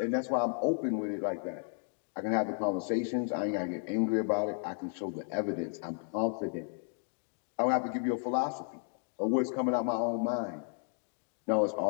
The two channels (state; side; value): silent; right; 56 dB below the other